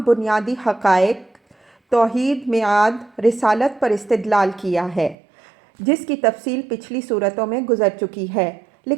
بنیادی حقائق، توحید، میعاد، رسالت پر استدلال کیا ہے، جس کی تفصیل پچھلی صورتوں میں گزر چکی ہے،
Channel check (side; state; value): left; drops out; at 5.2 s